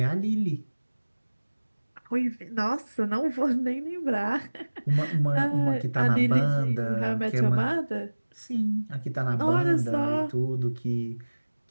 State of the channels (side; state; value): both; inverted; correlation -1.00